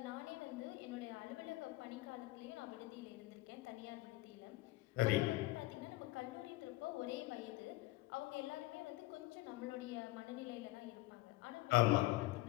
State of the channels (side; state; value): right; quieter; 19.6 dB